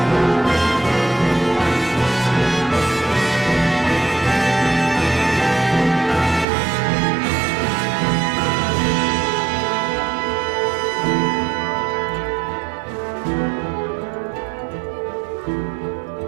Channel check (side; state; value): left; drops out; at 6.5 s